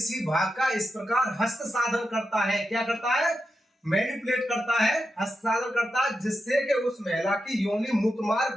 भाग का इस प्रकार हस्त साधन करता है, क्या करता है, मैनिपुलेट करता है, हस्तांतरण करता है, जिससे कि उस महिला की योनि,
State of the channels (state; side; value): normal; both; correlation 0.88